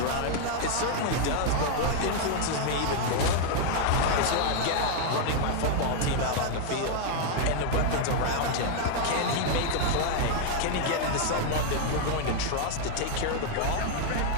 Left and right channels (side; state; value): both; different; correlation 0.00